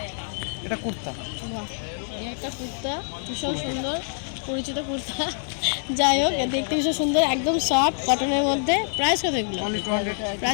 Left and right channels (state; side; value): silent; right; 61 dB below the other